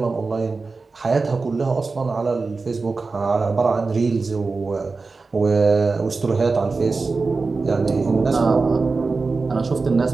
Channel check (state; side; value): quieter; left; 4.1 dB